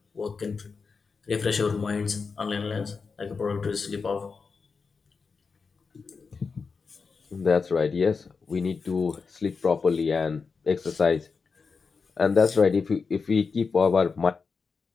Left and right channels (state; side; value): quieter; right; 5.0 dB